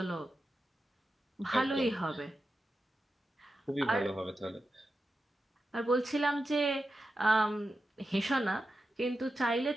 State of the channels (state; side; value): normal; both; correlation 0.90